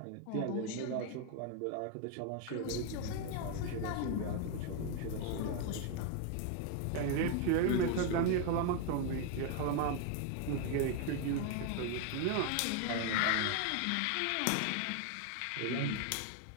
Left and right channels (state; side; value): different; both; correlation 0.01